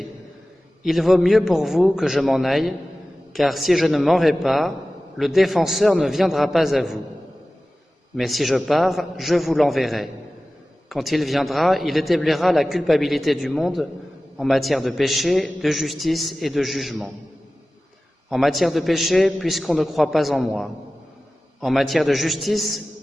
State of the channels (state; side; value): normal; both; correlation 0.96